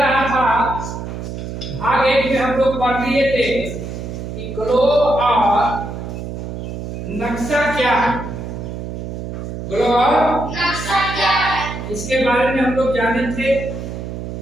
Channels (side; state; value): right; noise; hum, 7 dB below the sound